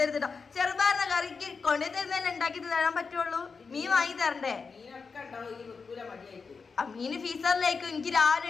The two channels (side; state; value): right; quieter; 5.0 dB